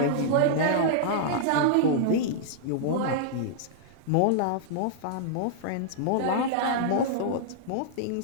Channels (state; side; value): different; both; correlation -0.01